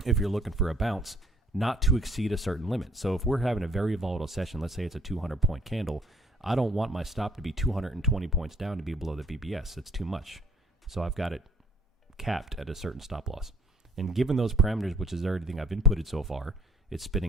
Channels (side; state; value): both; normal; correlation 0.57